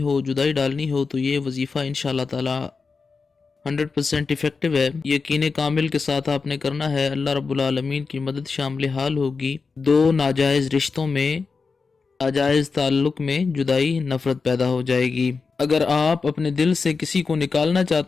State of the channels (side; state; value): right; quieter; 4.7 dB